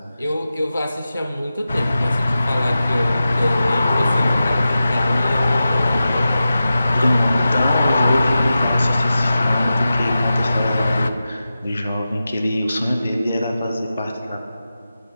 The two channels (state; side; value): inverted; both; correlation -0.93